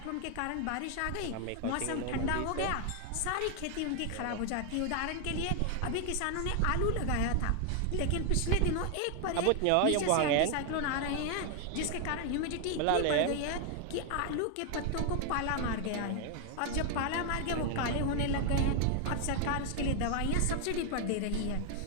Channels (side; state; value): both; different; correlation 0.00